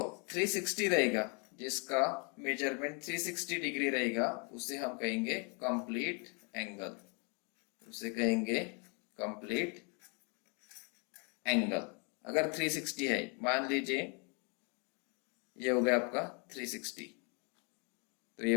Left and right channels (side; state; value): right; quieter; 35.2 dB